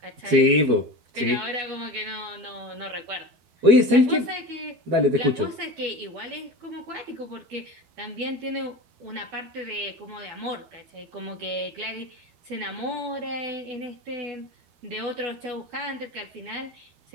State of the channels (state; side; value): late; left; 12 ms